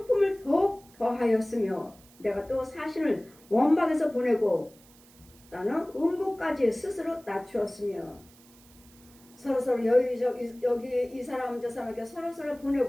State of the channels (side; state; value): right; noise; hiss, 26 dB below the sound